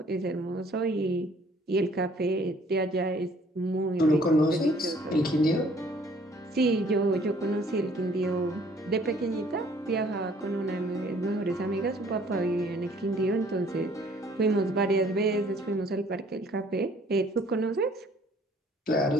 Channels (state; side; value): normal; both; correlation 0.58